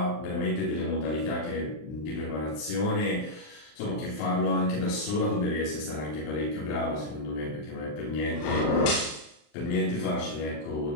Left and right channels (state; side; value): late; right; 40 ms